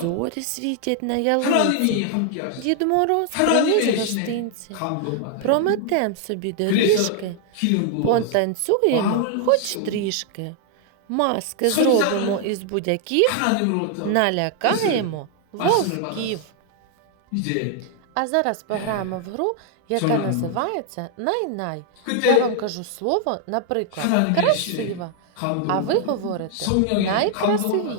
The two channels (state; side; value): different; both; correlation 0.00